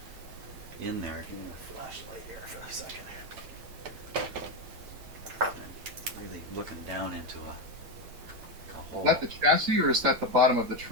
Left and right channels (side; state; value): left; late; 8.9 ms